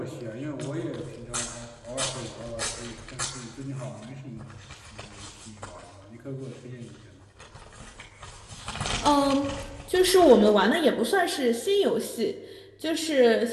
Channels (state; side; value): identical; both; correlation 1.00